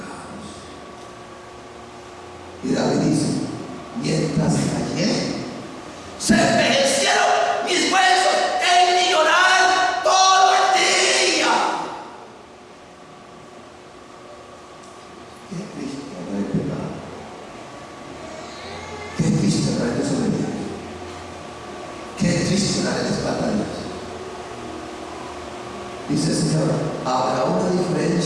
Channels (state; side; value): identical; both; correlation 1.00